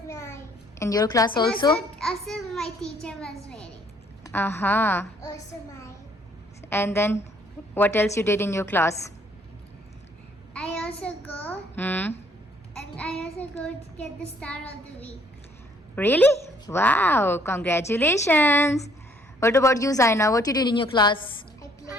my. In your class And also? also my teacher was wearing. Aha. Also my. And then, what else you did in your class? I also go Hmm. and I also go to get the star of the week. Really? Wow. Congratulations. What about you, Zaina? What you did in your class? I play.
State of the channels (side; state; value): both; normal; correlation 0.64